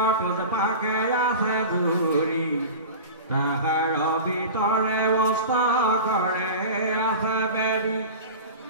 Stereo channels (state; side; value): inverted; both; correlation -0.32